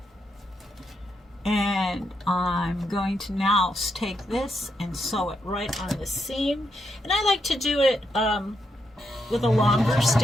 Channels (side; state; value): both; normal; correlation 0.80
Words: And I'm going to now take this and sew it right on the seam. And I like to do it with a longer